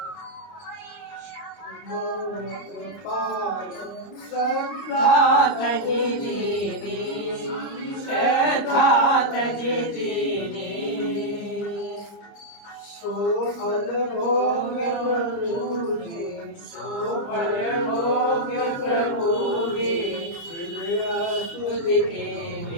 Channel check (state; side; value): late; right; 29 ms